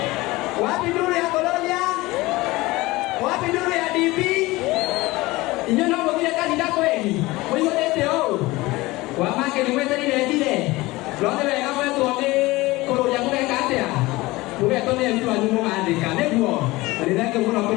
wapi nduru ya Kolonia? Wapi nduru ya DP? Inyo no mũthire kanitha kweli? Mũihũrĩte ũũ? Wamake nĩ mweterire njire? Rothe wega mwetwo nĩ kũrũria mũgeka atĩa? Mũgetwo nĩ aruti wanyu mũgandĩka nĩguo? Na nĩ thengiũ mũno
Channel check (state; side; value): quieter; right; 20.5 dB